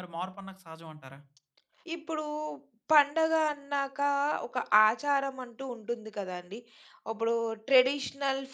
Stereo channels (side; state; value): both; identical; correlation 1.00